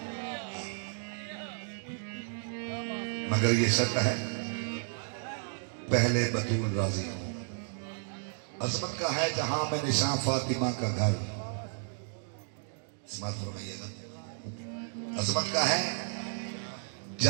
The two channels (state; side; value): silent; left; digital silence